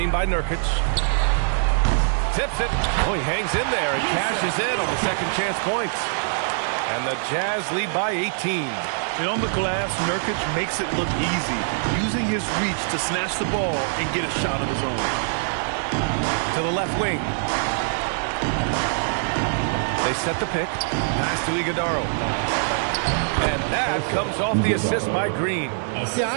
by Nurkic. Tips it. Oh, he hangs in there and cashes in on the second chance points. And the Jazz lead by 18. And on the glass, Nurkic makes it look easy, using his reach to snatch the ball and get a shot of his own. To the left wing. They set the pick. Pass to Iguodaro. And that comes off the assist by Green. Yeah,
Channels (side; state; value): left; silent; digital silence